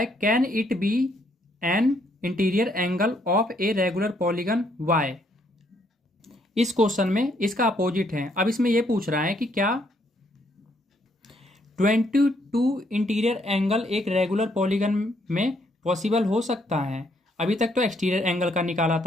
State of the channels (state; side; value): normal; both; correlation 0.71